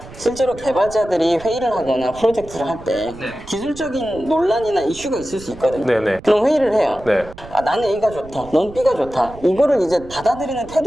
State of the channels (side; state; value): right; noise; rumble, 17 dB below the sound